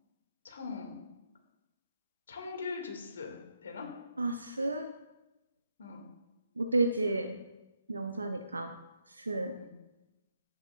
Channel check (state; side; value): inverted; both; correlation -0.79